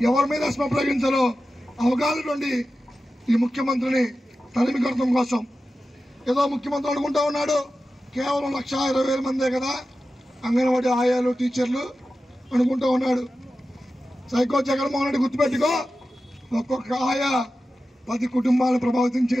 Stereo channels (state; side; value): normal; both; correlation 0.93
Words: ఎవరి మీద ఎస్మా ప్రయోగించాలో అవగాహన నుండి ఈ ముఖ్యమంత్రిని తరిమి కొట్టడం కోసం ఏదో ముఖ్యమంత్రి అనుకుంటా ఉన్నాడు, కేవలం 1,20,000 మందే కదా అంగన్వాడీ ఆయాలు, టీచర్లు అనుకుంటూ ఉన్నాడు. సైకో జగన్మోహన్ రెడ్డి గుర్తుపెట్టుకో, ఒక్కొక్క ఆయా 10 కుటుంబాలను ప్రభావితం